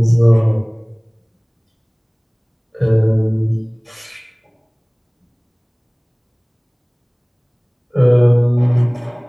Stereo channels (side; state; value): both; identical; correlation 1.00